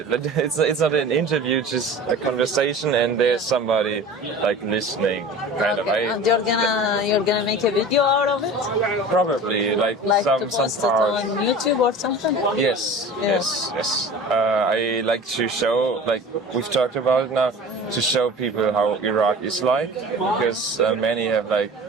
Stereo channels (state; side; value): normal; both; correlation 0.38